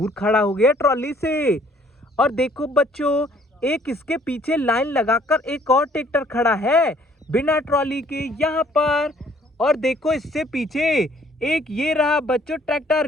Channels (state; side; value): normal; both; correlation 0.60